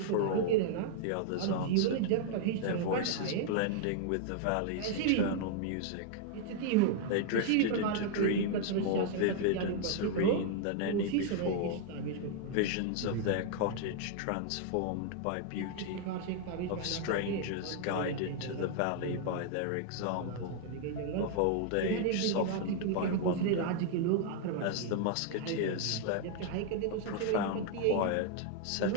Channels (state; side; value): different; both; correlation 0.00